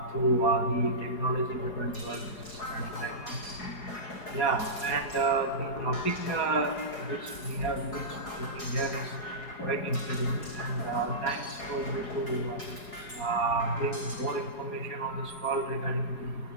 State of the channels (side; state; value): right; late; 4.8 ms